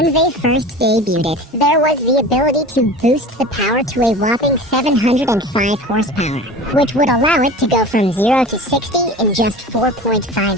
they first debuted it, there was the ability to boost the power to a whopping 705 horsepower, which would allow it to go from 0 to 60 in just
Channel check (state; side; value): normal; both; correlation 0.36